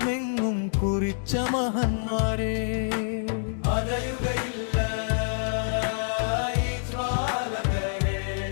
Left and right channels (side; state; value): right; silent; digital silence